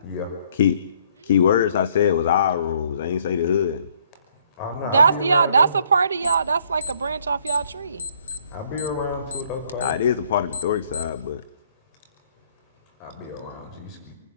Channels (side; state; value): both; inverted; correlation -0.64